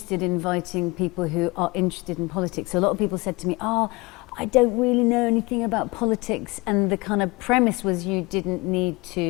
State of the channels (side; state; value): right; quieter; 24.7 dB